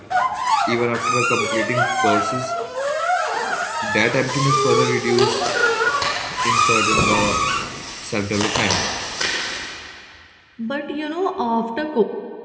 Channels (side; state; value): both; identical; correlation 1.00